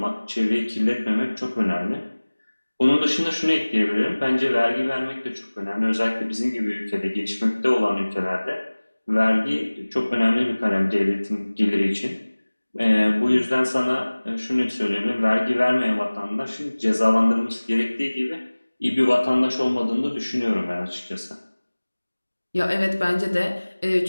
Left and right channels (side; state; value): both; inverted; correlation -1.00